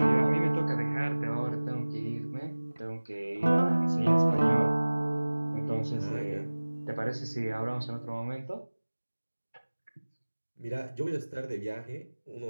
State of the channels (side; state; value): both; inverted; correlation -1.00